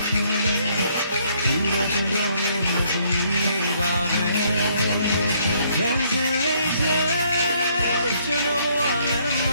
တယ်ဒီတော့ကျွန်တော်ရဲ့မသမီးလေးပါပဲခံစလေးတဲ့ကျွန်တော်ဘဝလည်းမ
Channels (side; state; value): both; inverted; correlation -0.67